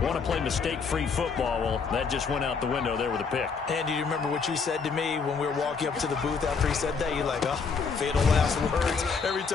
want to play mistake-free football. Well, that just went out the window there with a pick. And do you remember what you said to me when we were walking up to the booth after he said that? You're like, oh, fatal last words. Every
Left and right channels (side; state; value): right; quieter; 5.4 dB